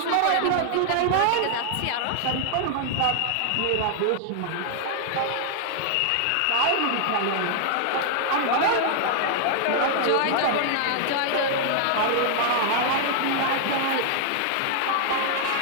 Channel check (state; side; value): different; both; correlation 0.00